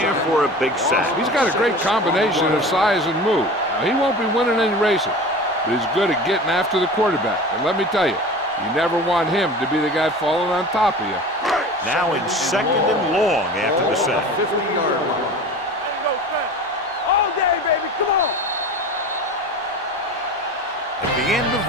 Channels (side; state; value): both; normal; correlation 0.36